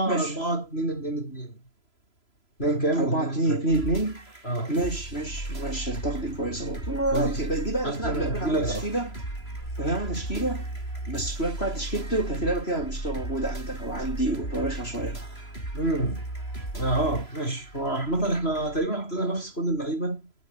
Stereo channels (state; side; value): late; right; 3.0 ms